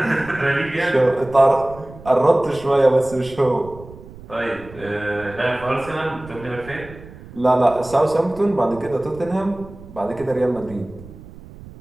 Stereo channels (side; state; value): right; noise; rumble, 18 dB below the sound